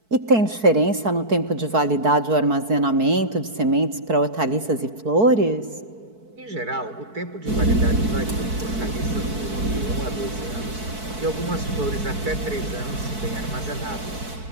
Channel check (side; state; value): left; late; 4.6 ms